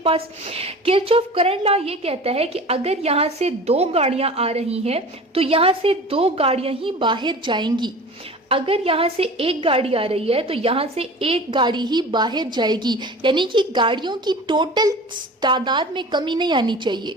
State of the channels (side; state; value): both; normal; correlation 0.38